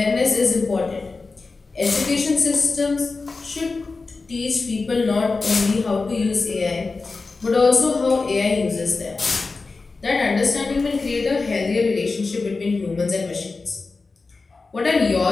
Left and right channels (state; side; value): quieter; right; 4.0 dB